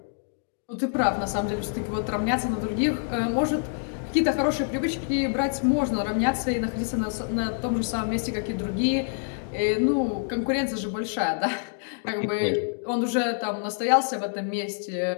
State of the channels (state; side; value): silent; right; 61 dB below the other